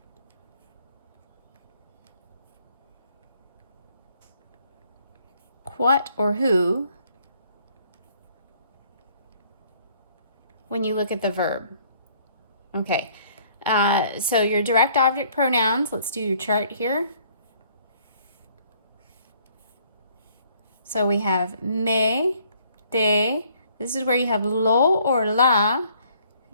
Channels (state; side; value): inverted; both; correlation -0.62